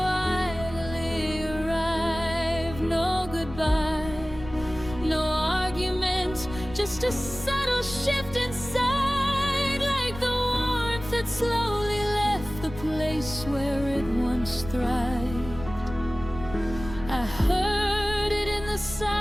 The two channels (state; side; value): noise; left; rumble, 13 dB below the sound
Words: arrived. No goodbye, no argument, just a subtle shift inside, like the warmth that slowly left the place where it once thrived. I heard it in the